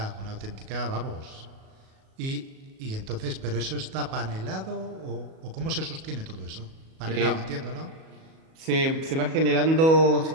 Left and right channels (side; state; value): left; late; 37 ms